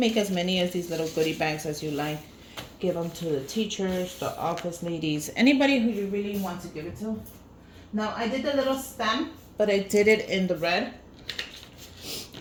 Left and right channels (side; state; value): both; identical; correlation 1.00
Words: as many as these little goodie bags as you like. Give them to the teachers, the office ladies, anybody who you really want to give it to. Now I did the little stem, but I did it in the red.